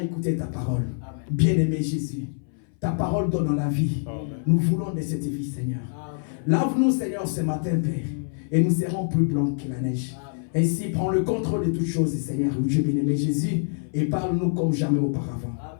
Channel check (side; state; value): right; silent; 60 dB below the other